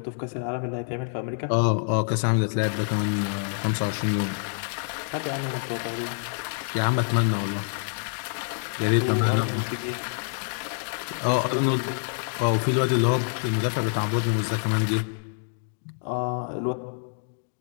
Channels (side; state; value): right; silent; digital silence